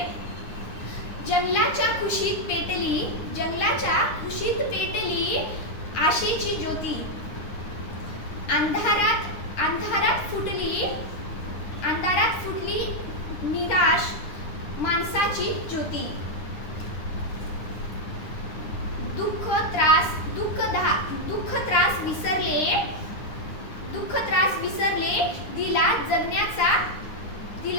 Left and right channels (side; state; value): right; late; 9.8 ms